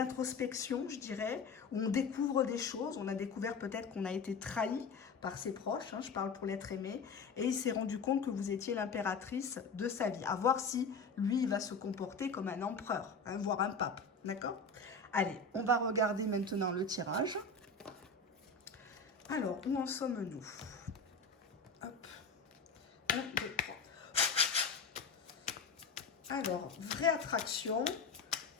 je dirais, où on découvre des choses, on a découvert peut-être qu'on a été trahi par ses proches, hein, je parle pour l'être aimé, et il s'est rendu compte que vous étiez l'impératrice de sa vie, à voir si lui il va se comporter comme un empereur, hein, voire un pape, d'accord? Allez, on va regarder maintenant le tirage. Alors, où en sommes-nous? Hop. 1, 2, 3. Alors, vraie attraction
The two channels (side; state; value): right; quieter; 4.4 dB